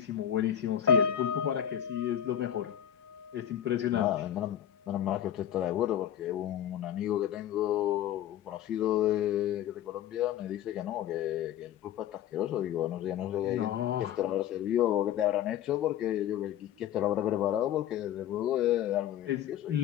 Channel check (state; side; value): quieter; right; 10.5 dB